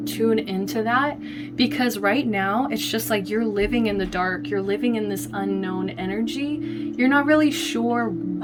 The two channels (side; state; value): both; identical; correlation 1.00